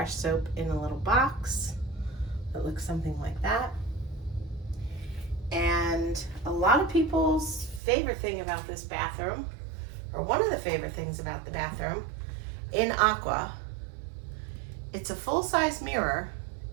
soap in a little box that looks something like that. And a lot of people's favorite thing about this bathroom, or one of the favorite things about the bathroom in AQUA, it's a full-size mirror,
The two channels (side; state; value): left; drops out; at 7.8 s